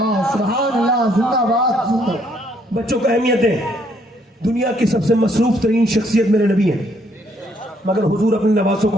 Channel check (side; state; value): both; normal; correlation 0.68